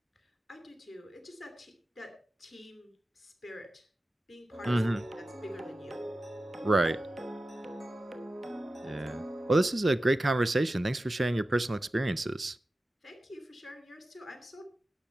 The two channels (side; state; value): both; normal; correlation 0.94